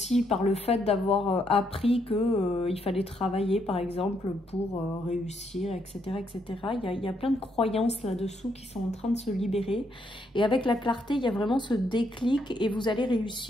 par le fait d'avoir appris qu'il fallait travailler par exemple pour réussir, etc. etc. Il y a plein de croyances là-dessous qui sont en train de se libérer, et avec la clarté il y a vraiment ce déclic et vous allez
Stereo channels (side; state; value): both; normal; correlation 0.75